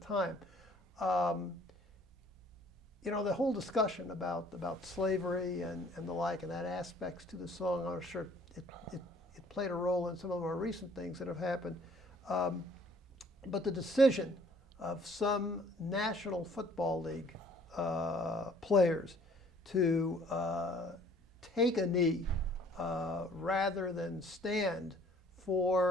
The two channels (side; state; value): both; normal; correlation 0.56